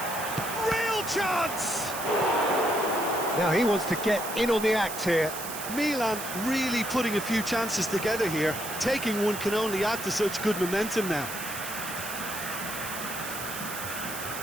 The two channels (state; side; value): noise; right; hiss, 8 dB below the sound